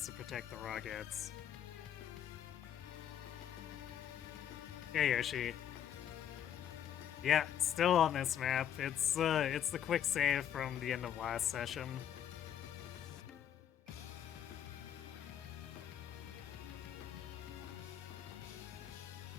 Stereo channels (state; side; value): quieter; right; 9.9 dB